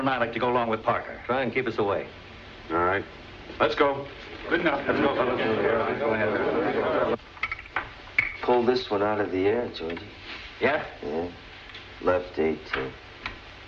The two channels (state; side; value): identical; both; correlation 1.00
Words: I like to go along with Parker. Try and keep us away. All right. Let's go. Good enough. Let's go, fellas. Go ahead. Pull this one out of the air, Georgie. Yeah? Yeah. Left 18.